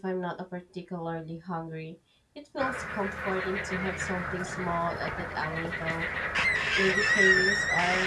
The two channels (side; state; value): both; identical; correlation 1.00